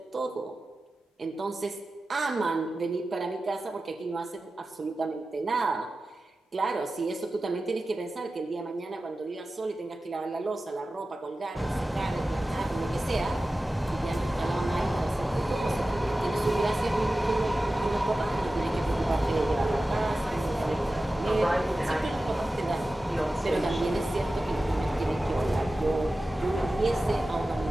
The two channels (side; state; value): both; normal; correlation 0.95